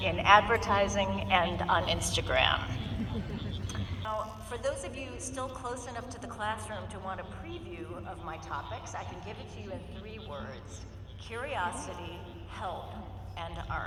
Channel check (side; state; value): both; identical; correlation 1.00